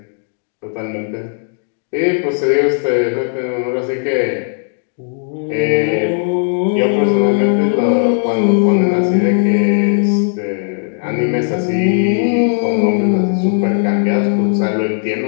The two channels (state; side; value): silent; right; digital silence